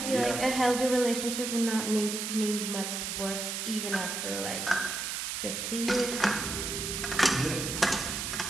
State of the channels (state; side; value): noise; right; hiss, 3 dB below the sound